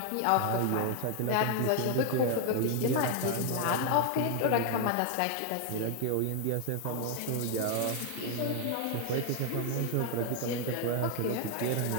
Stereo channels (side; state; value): both; different; correlation 0.00